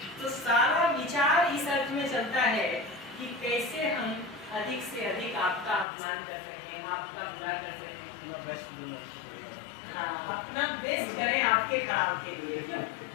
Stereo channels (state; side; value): drops out; right; at 5.9 s